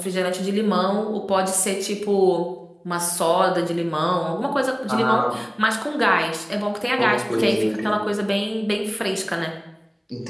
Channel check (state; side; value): identical; both; correlation 1.00